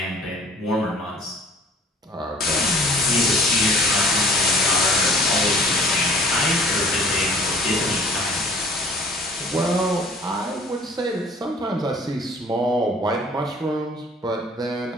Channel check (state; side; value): normal; both; correlation 0.51